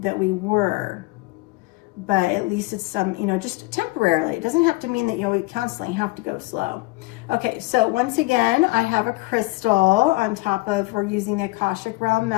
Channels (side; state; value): right; quieter; 22.4 dB